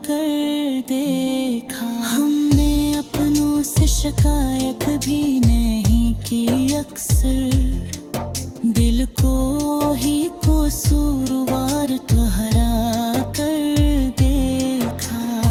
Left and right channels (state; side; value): identical; both; correlation 1.00